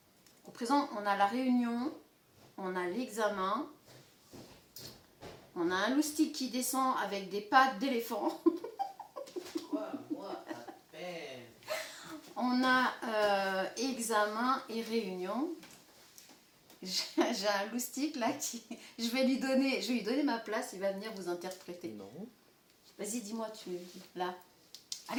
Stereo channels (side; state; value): both; identical; correlation 1.00